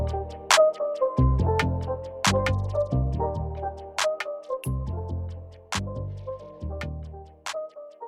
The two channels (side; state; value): both; identical; correlation 1.00